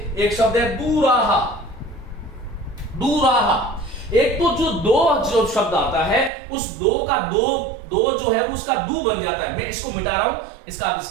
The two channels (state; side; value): drops out; left; at 6.3 s